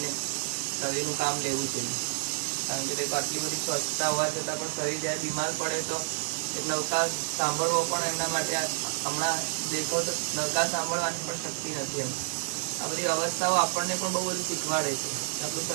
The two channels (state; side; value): silent; left; 58 dB below the other